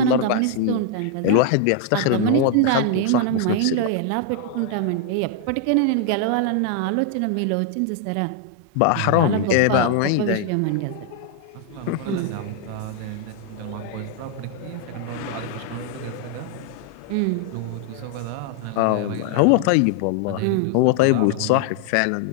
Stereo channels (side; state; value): both; different; correlation 0.00